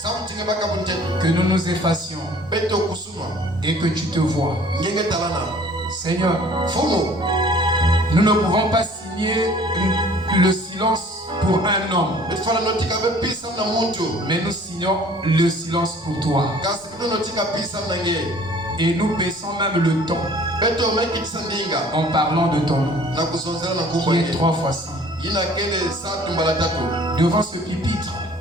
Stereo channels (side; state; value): both; normal; correlation 0.52